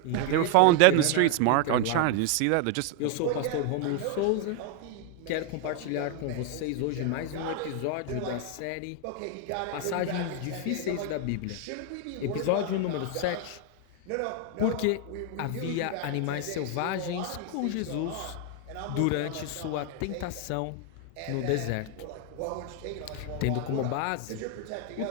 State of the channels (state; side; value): different; both; correlation 0.00